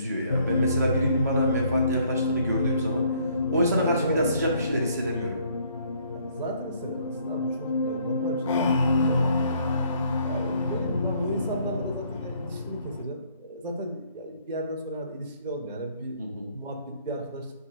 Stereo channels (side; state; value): both; inverted; correlation -0.64